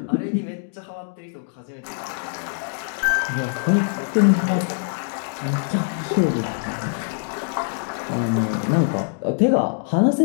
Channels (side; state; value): right; silent; digital silence